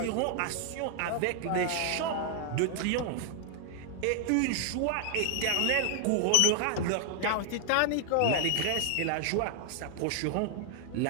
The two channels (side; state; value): both; different; correlation 0.00